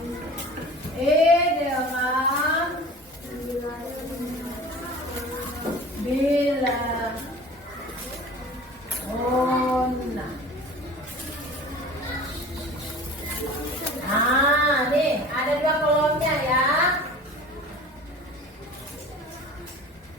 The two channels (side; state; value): both; normal; correlation 0.40